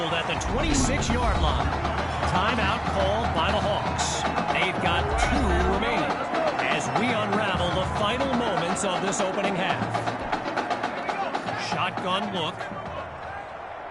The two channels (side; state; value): both; identical; correlation 1.00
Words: at the 26-yard line. Timeout called by the Hawks. They've got 2 remaining as we unravel the final moments of this opening half. Shotgun look.